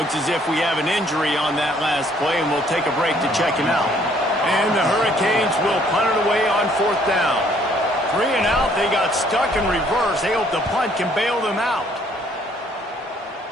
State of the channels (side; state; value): both; normal; correlation 0.63